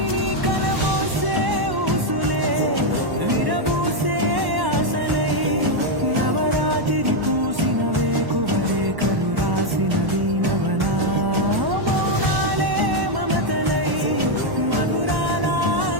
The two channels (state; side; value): late; left; 1.1 ms